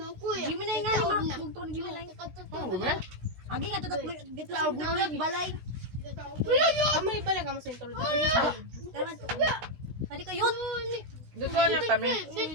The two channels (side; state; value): left; late; 16 ms